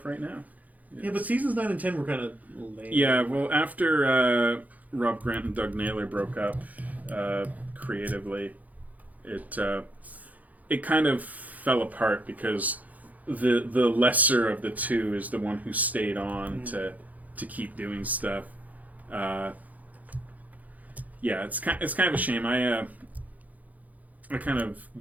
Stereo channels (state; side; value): late; left; 0.077 ms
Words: right now. Yes. Yeah, but seasons 9 and 10 were kind of lame. Yeah, well, after Rob Grant and Doug Naylor broke up creatively, it kind of fell apart because the lesser of the two is the one who stayed on to keep doing stuff. Yeah, it's kind of a shame. I kind of